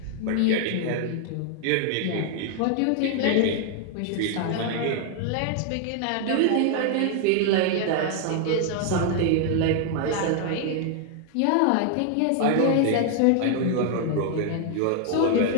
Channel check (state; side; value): different; both; correlation 0.00